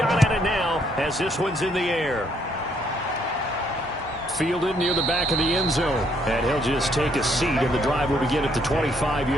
at it now as this one's in the air. Fielded near the back of the end zone. And he'll just take a seat, and the drive will begin at the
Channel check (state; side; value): normal; both; correlation 0.69